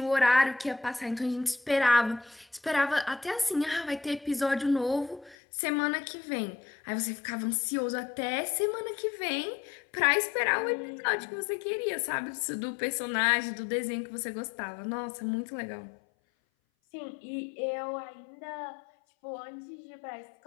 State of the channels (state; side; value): drops out; right; at 5.4 s